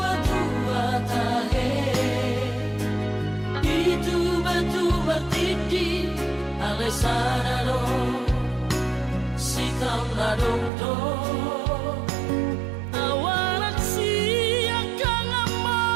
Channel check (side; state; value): left; drops out; at 10.7 s